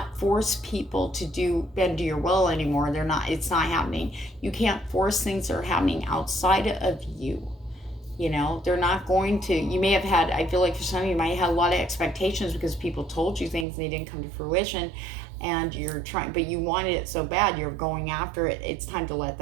force people to bend to your will anymore. It's not happening. You can't force things that are happening outside of you. They're not going to. You may have had, I feel like for some of you might have had a lot of expectations because people told you things and they didn't come to fruition, and you're trying, but you wanted it so bad, you're going after it. It's time to let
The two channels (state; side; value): drops out; left; at 13.7 s